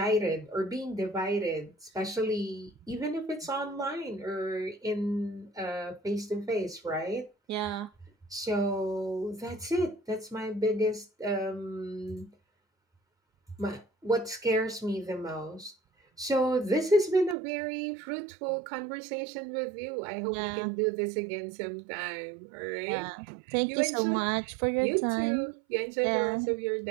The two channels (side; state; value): left; drops out; at 17.4 s